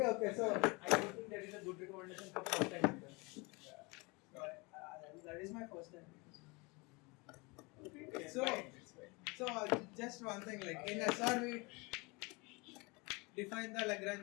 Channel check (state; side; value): quieter; right; 27.3 dB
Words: so I don't think that is a good recommendation for first time. that is my first time. It's So, fine. just one thing, like in SR we define the